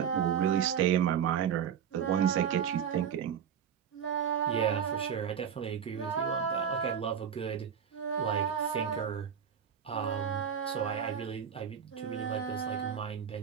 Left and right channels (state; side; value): quieter; left; 8.1 dB